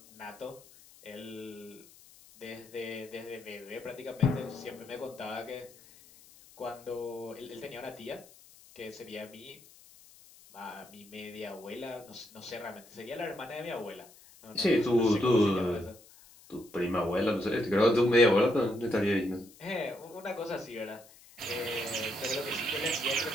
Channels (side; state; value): left; noise; hiss, 23 dB below the sound